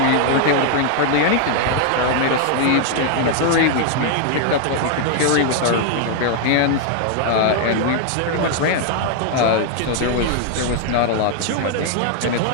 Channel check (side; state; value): both; different; correlation 0.00